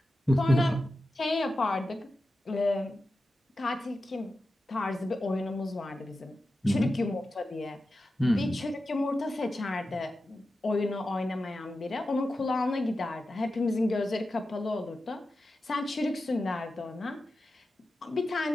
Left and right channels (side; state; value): both; normal; correlation 0.92